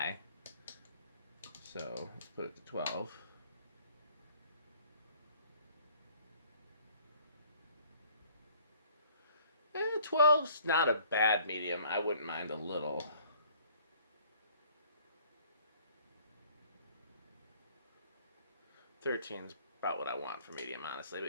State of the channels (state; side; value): inverted; both; correlation -0.55